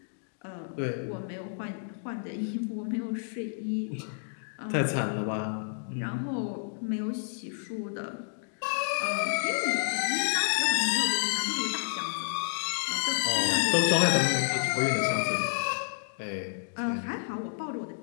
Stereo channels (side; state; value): right; silent; digital silence